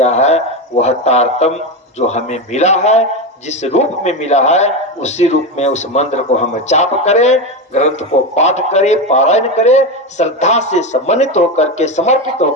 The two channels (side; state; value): both; normal; correlation 0.15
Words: है। वह तारतम जो हमें मिला है, जिस रूप में मिला है, उसी रूप में उस मंत्र को हम जाप करें, ग्रंथ को पाठ करें, पारायण करें, श्रद्धा से सम्मानित होकर के, समर्पित